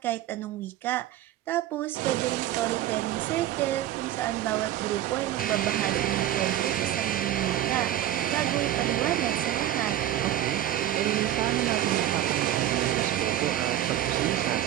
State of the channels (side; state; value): left; quieter; 12.6 dB